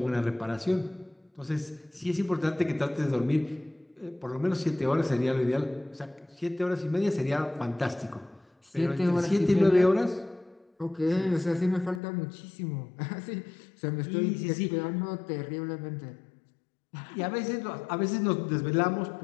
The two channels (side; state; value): right; drops out; at 12.0 s